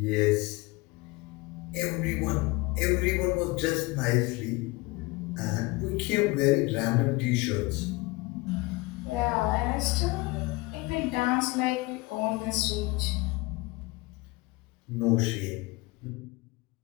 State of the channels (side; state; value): right; quieter; 23.3 dB